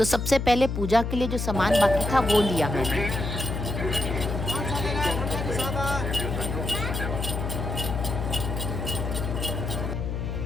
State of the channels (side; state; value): left; noise; hum, 3 dB below the sound